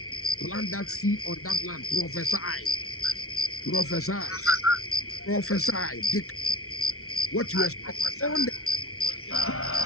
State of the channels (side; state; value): right; late; 0.63 ms